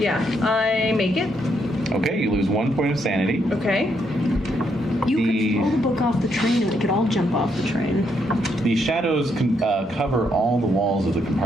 I make it. Okay, you lose 1 point of sanity. Okay. You The- could throw the book off the train and we could all jump off the train. The shadows cover all the walls of the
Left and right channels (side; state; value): both; normal; correlation 0.76